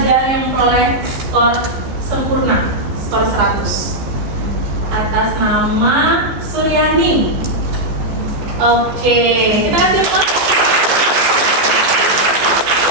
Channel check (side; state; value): left; late; 14 ms